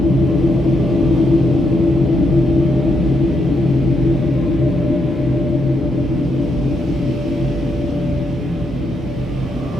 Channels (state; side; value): normal; both; correlation 0.79